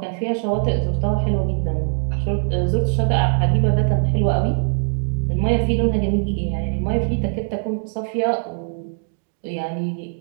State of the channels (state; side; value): silent; left; digital silence